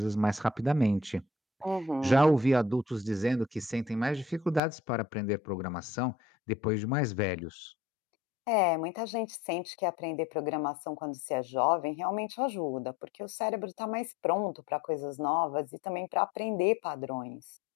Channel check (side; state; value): right; drops out; at 4.6 s